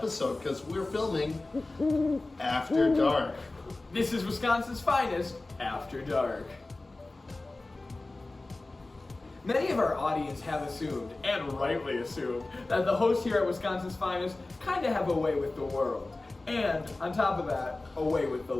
because we're filming After Dark. This is Wisconsin's Finest, After Dark. Many of our audience have assumed, and rightly assumed, that the hosts here at Wisconsin's Finest kind of have a way with the world. And, on top of that, a way with the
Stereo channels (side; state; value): right; quieter; 3.0 dB